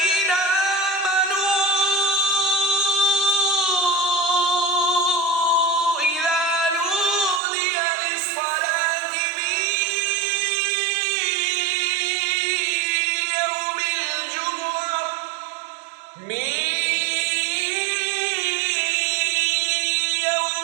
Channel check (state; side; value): drops out; left; at 7.4 s